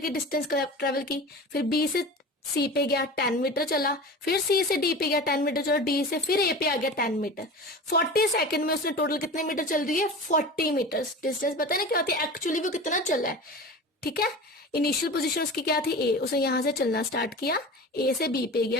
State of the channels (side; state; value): both; normal; correlation 0.33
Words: डिस्टेंस ट्रेवल की, फिर बी से सी पे गया 10 मीटर चला, फिर सी से डी पे गया 10 मीटर चला, डी से फिर ए पे आ गया 10 मीटर। 40 सेकंड में उसने टोटल कितने मीटर चल रही है? 40 मीटर। डिस्टेंस पता है ना क्या होती है एक्चुअली, वो कितना चल रहा है। ठीक है, इनिशियल पोजीशन उसकी क्या थी? ए। उसने यहां से चलना स्टार्ट किया, ए से बी पे